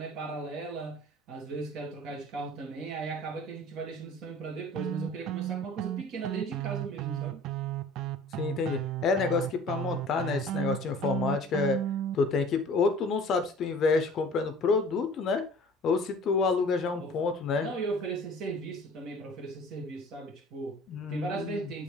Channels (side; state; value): both; normal; correlation 0.46